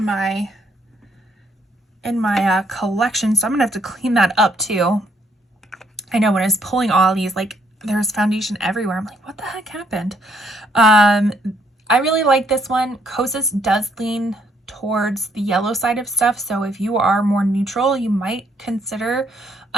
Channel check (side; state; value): both; normal; correlation 0.70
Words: my collection, so I'm gonna have to clean that up too. I know when I was pulling all these, like there's foundation everywhere. I'm like, what the heck happened? I really like this one. Kosas does lean towards the yellow side of stuff, so if you are more neutral, you might consider